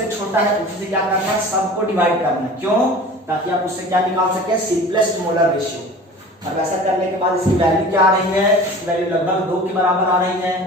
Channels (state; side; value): normal; both; correlation 0.40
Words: छोटा है उसी से क्या करना है, सबको डिवाइड करना है। क्यों, ताकि आप उससे क्या निकाल सके, सिंपलेस्ट मोलर रेशियो। अब ऐसा करने के बाद इसकी वैल्यू क्या आ रही है, इसकी वैल्यू लगभग 2 के बराबर आ रही